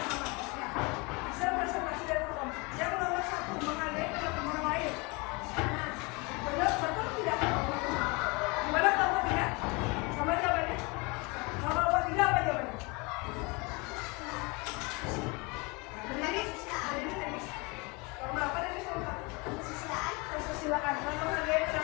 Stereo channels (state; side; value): quieter; right; 27.9 dB